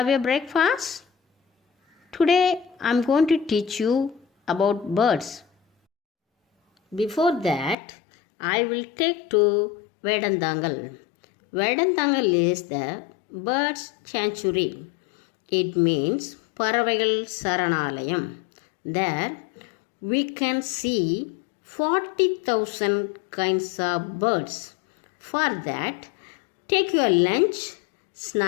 a breakfast? Today I am going to teach you about birds. Before that, I will take to Vedantangal. Vedantangal is the birds sanctuary. It means பறவைகள் சரணாலயம். There we can see 40,000 kinds of birds. For that, take your lunch,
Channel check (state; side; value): drops out; right; at 7.8 s